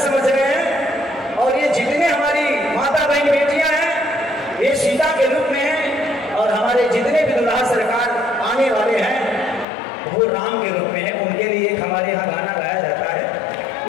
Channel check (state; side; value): drops out; right; at 9.7 s